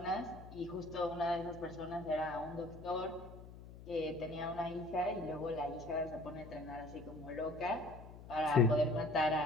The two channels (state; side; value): noise; left; hum, 15 dB below the sound